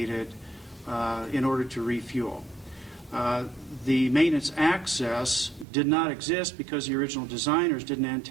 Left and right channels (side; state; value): left; drops out; at 5.7 s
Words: in order to refuel. The maintenance access did not exist because the original designers didn't